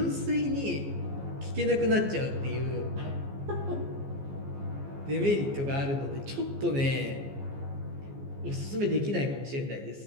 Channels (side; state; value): left; late; 15 ms